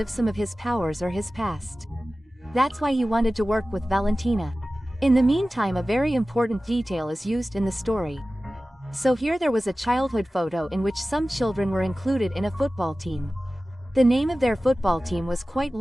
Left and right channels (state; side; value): normal; both; correlation 0.96